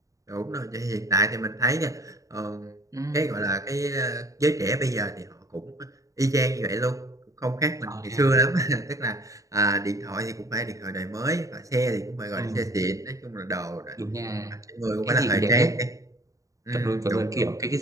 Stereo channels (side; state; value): left; late; 0.16 ms